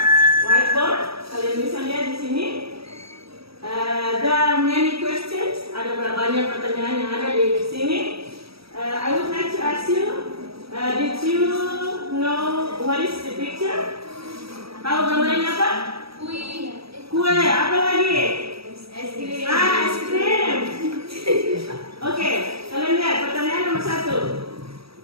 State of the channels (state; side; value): late; left; 0.77 ms